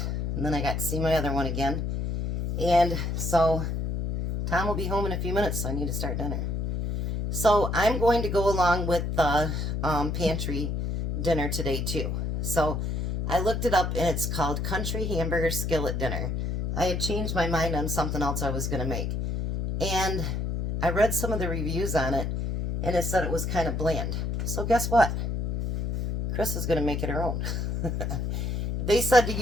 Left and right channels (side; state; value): left; noise; hum, 1 dB below the sound